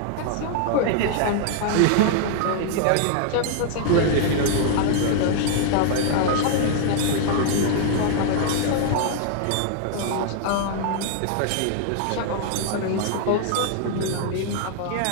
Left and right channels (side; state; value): both; different; correlation 0.00